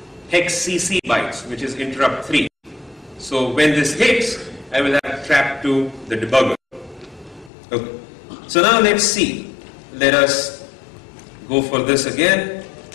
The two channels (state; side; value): drops out; right; at 7.5 s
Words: hex CC bytes, which is interrupt 3. So when this hits, I will have trap to the debugger. Okay. So now let's see. Let us go for this again.